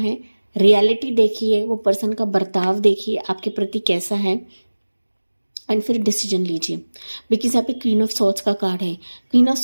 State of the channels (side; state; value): both; inverted; correlation -1.00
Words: रियलिटी देखिए, वो पर्सन का बर्ताव देखिए आपके प्रति कैसा है, एंड फिर डिसीजन लीजिए। बिकॉज यहाँ पे क्वीन ऑफ सोर्ड्स का कार्ड है। क्वीन ऑफ